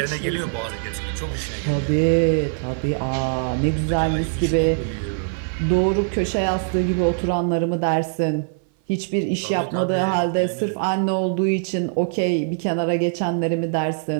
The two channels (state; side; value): silent; left; 58 dB below the other